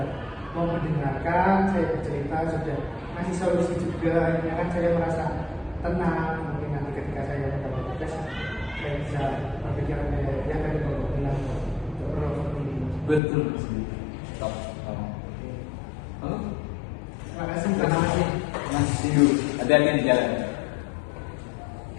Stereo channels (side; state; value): right; drops out; at 13.2 s